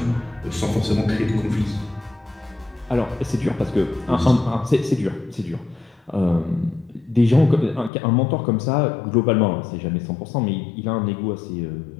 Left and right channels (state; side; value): drops out; right; at 7.9 s